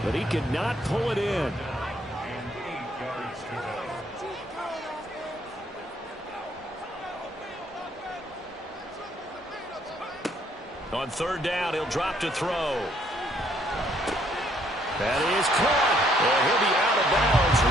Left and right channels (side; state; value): both; normal; correlation 0.67